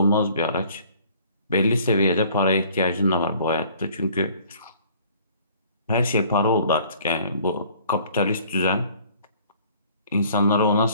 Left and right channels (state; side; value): inverted; both; correlation -0.55